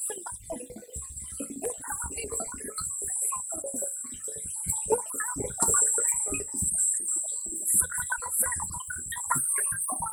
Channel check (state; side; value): identical; both; correlation 1.00